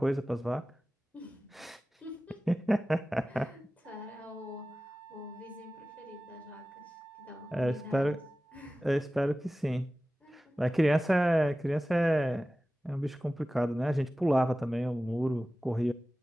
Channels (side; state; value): both; normal; correlation 0.96